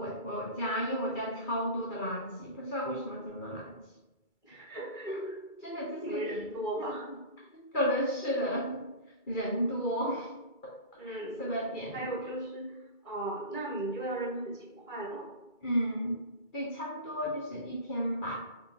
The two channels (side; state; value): right; late; 2.3 ms